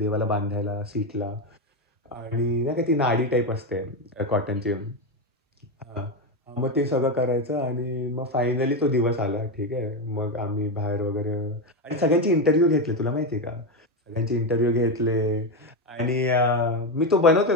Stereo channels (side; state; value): both; normal; correlation 0.11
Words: बांधायला सीटला. आणि नाही का ती नाडी टाईप असते कॉटनची. हां. मग ते सगळं करायचं आणि मग फायनली तो दिवस आला. ठीक आहे. मग आम्ही बाहेर वगैरे आणि सगळ्यांचे इंटरव्ह्यू घेतले. तुला माहिती आहे का? सगळ्यांचे इंटरव्ह्यू घेतले आणि मी तो बनवतोय